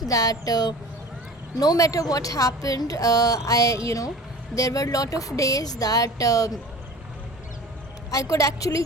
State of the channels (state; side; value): normal; both; correlation 0.40